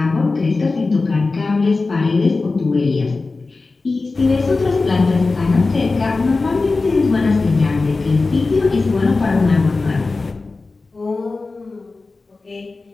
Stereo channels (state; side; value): quieter; right; 3.7 dB